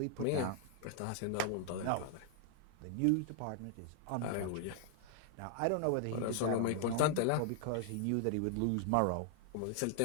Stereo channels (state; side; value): different; both; correlation 0.00